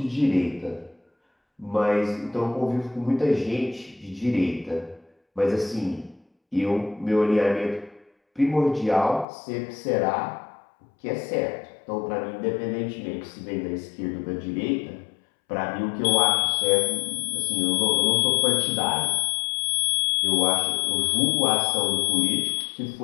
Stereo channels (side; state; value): right; drops out; at 9.2 s